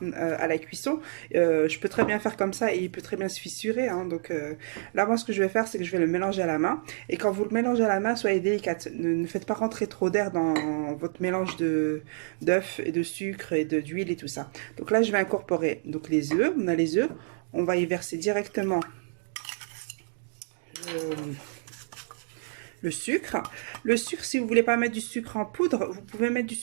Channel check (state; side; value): silent; left; digital silence